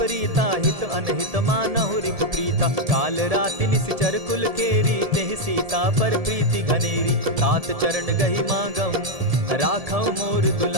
हित अनहित मानहु रिपु प्रीता। काल राति निशिचर कुल केरी, तेहि सीता पर प्रीति घनेरी। तात चरण गहि मांगऊं, राखऊं मोर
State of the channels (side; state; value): left; late; 1.7 ms